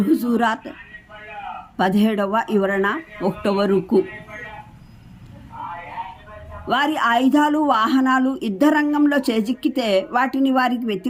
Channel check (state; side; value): identical; both; correlation 1.00